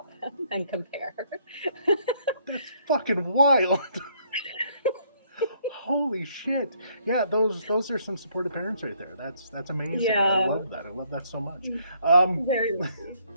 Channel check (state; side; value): inverted; both; correlation -0.68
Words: them and compare. That's fucking wild. Holy shit. Yeah, those are some supportive parents right there. That's amazing. Yeah. I love that. I love that so much. Very lucky.